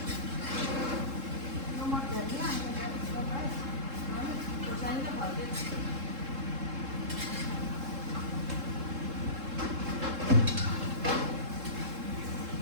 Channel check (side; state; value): left; late; 3.7 ms